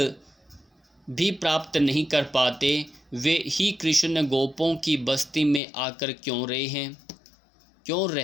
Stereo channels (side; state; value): right; drops out; at 5.6 s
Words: भी प्राप्त नहीं कर पाते, वे ही कृष्ण गोपों की बस्ती में आकर क्यों